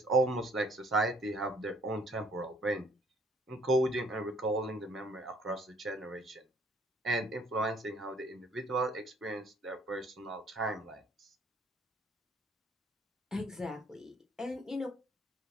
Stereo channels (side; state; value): both; normal; correlation 0.60